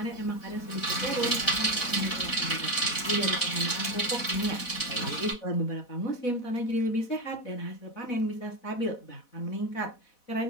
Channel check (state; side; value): late; right; 4.1 ms